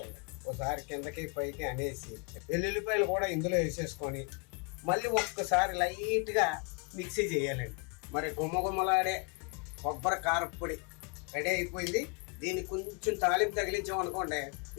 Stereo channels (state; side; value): quieter; right; 33.7 dB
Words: ఒకసారి కిందకి పైకి అనేసి వెల్లుల్లిపాయలు కూడా ఇందులో వేసేసుకొని మళ్ళీ ఒక్కసారి లైట్గా మిక్సీ చేయాలండి. మరి గుమ్మగుమ్మలాడే కొబ్బరి కారపొడి రెడీ అయిపోయింది. దీన్ని కొంచెం తాలింపు తగిలించామనుకోండి